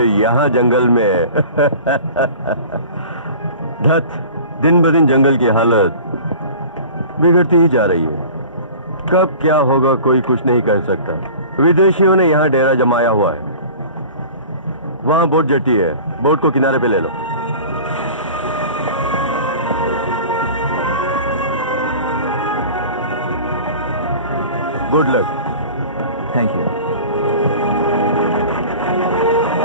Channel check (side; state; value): both; inverted; correlation -0.40